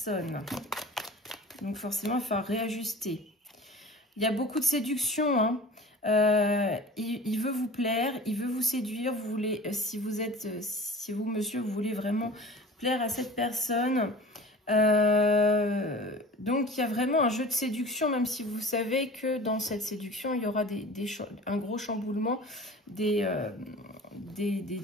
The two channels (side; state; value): both; normal; correlation 0.40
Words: Donc forcément, il faut réajuster. Il y a beaucoup de séduction. Hein. Il veut vous plaire, il veut vous séduire. Vous voulez, si vous, monsieur, vous voulez vraiment plaire à cette personne. Donc, il y a vraiment un jeu de séduction, même si vous savez que dans cette séduction, il y aura un gros chamboulement, des